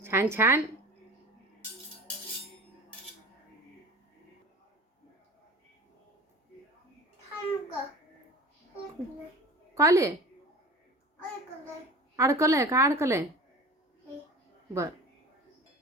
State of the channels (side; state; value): both; normal; correlation 0.37